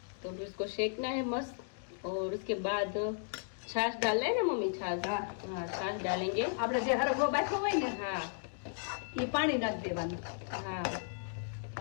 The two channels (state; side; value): silent; right; digital silence